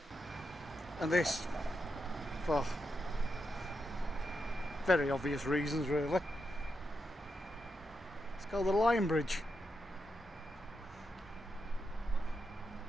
And this, for very obvious reasons really, it's called the Lion Bridge.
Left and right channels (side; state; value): both; normal; correlation 0.85